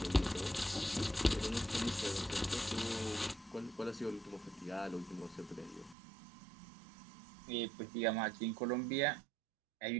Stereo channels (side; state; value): left; drops out; at 6.0 s